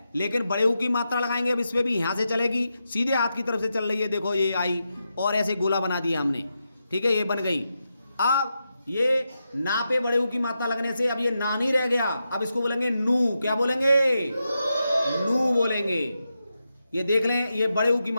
लेकिन बड़े ऊ की मात्रा लगाएंगे अब इस पे भी। यहां से चलेगी, सीधे हाथ की तरफ से चल रही है, देखो ये आई, और ऐसे गोला बना दिया हमने। ठीक है, ये बन गई। अब ये ना पे बड़े ऊ की मात्रा लगने से अब ये ना नहीं रह गया, अब इसको बोलेंगे नू। क्या बोलेंगे? नू बोलेंगे। ये देख लें, ये बड़े ऊ की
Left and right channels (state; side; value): inverted; both; correlation -0.87